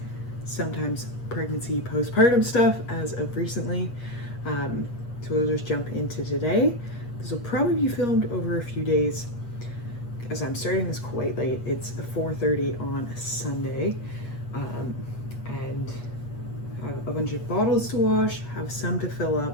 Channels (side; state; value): right; late; 8.3 ms